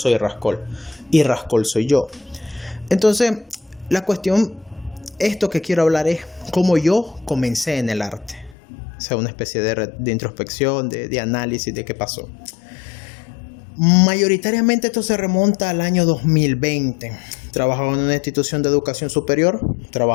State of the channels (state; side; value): drops out; right; at 8.6 s